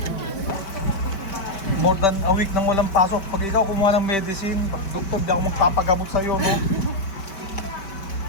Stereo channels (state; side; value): late; right; 5.1 ms